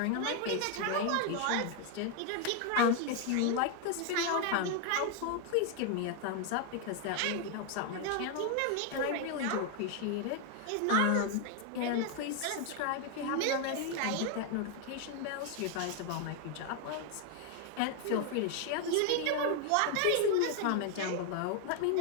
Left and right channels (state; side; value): different; both; correlation 0.01